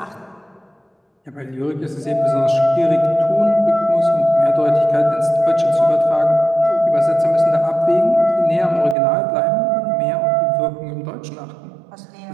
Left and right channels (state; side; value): drops out; left; at 9.0 s